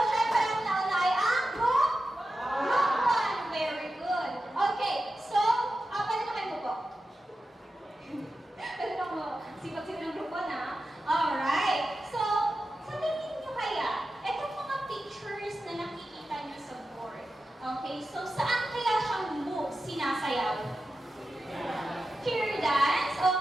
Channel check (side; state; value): both; normal; correlation 0.92